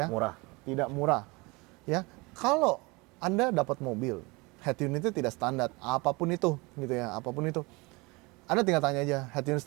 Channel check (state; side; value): quieter; left; 25.7 dB